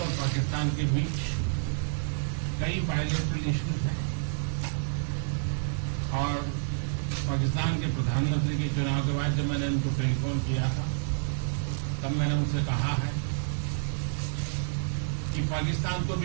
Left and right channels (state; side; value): silent; left; 59 dB below the other